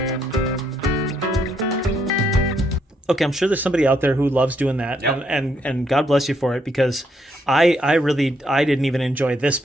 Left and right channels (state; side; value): normal; both; correlation 0.74